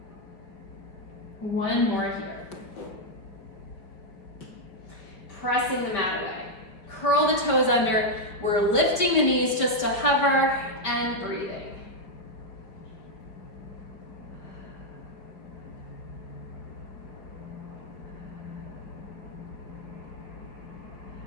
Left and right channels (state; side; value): late; right; 5.1 ms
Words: One more here. Pressing the mat away. Curl the toes under. We're lifting the knees just to hover and breathing.